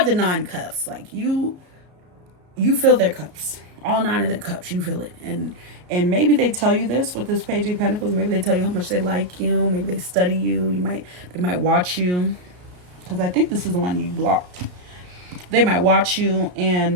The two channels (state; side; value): late; left; 33 ms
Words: 9 cups. Like you fill their cups. All 9 of their cups. You fill it. And maybe they tell you this with this Page of Pentacles. Maybe they tell you how much they like you. Maybe they study you. They might watch you. Because I think this is the one you blocked. They might watch you